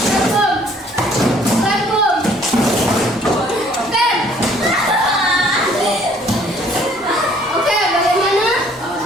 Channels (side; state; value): both; normal; correlation 0.59